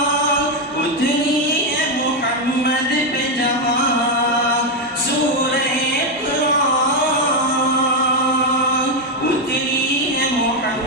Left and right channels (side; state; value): both; normal; correlation 0.05